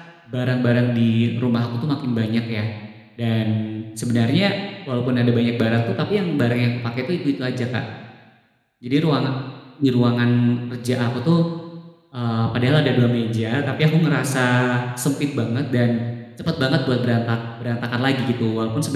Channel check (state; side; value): identical; both; correlation 1.00